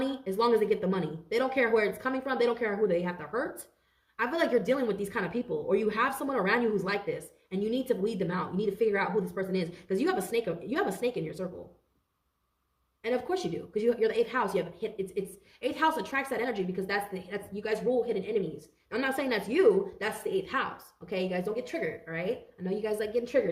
as long as they get the money. They don't care where it's coming from. They don't care who they have to hurt. I feel like you're dealing with these kind of people, or you have someone around you who's like this, and you need to weed them out. You need to figure out who this person is, because you have a snake in your circle. And of course you do, because you're the 8th house. You have it's 8th house attracts that energy, because that's you guys rule hidden enemies. I'm not saying that's you. That's the 8th house. Okay, you guys don't get triggered. All right. I know you guys like getting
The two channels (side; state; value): both; identical; correlation 1.00